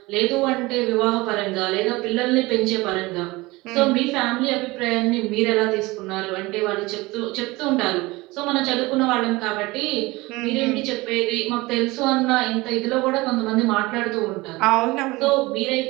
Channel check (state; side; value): quieter; left; 21.7 dB